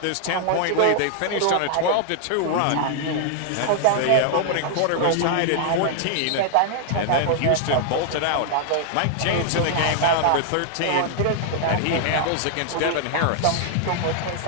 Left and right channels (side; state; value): both; different; correlation -0.01